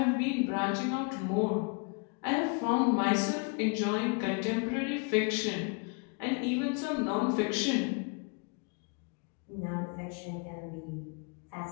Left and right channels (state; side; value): quieter; right; 34.1 dB